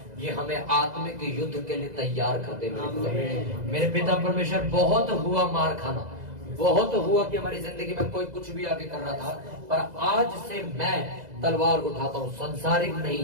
ये हमें आत्मिक युद्ध के लिए तैयार करते मेरे खुदा। मेरे पिता परमेश्वर बहुत हुआ मार खाना, बहुत हुआ कि हमारी जिंदगी में कोई कुछ भी आगे कर रहा था, पर आज से मैं तलवार उठाता हूँ, संसारिक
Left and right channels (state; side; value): late; left; 2.0 ms